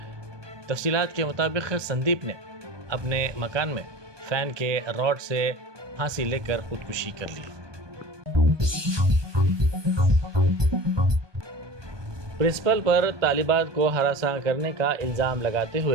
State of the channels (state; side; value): late; left; 1.2 ms